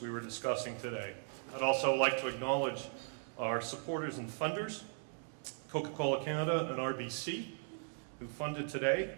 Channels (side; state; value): left; silent; 52 dB below the other